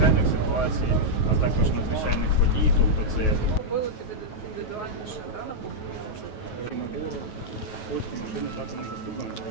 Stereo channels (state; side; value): late; right; 9.3 ms